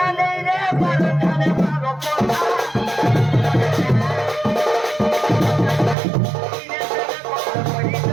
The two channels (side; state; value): left; drops out; at 6.0 s